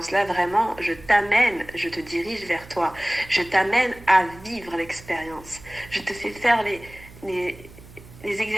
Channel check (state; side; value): noise; right; hum, 20 dB below the sound